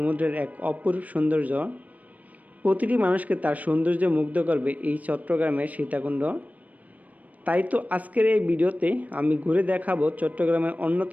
এক অপরূপ সৌন্দর্য। প্রতিটি মানুষকে তার সৌন্দর্যে মুগ্ধ করবে এই চট্টগ্রামের সীতাকুণ্ড। তাই তো আজকের এই ভিডিওতে আমি ঘুরে দেখাবো চট্টগ্রামের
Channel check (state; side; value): late; left; 0.073 ms